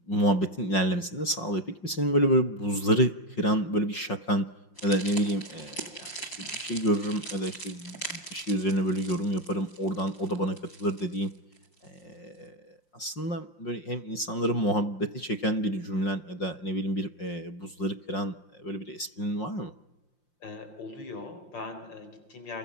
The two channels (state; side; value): late; right; 5.7 ms